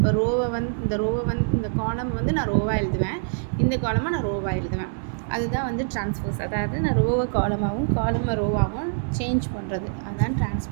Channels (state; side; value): silent; left; 62 dB below the other